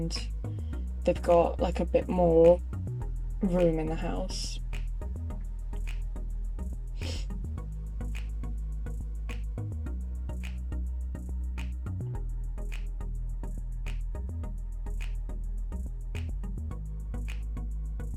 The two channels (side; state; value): both; identical; correlation 1.00